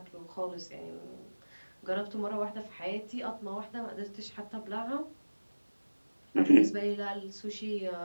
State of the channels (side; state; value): both; inverted; correlation -1.00